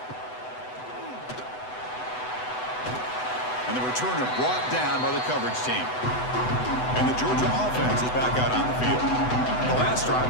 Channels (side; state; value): right; late; 8.0 ms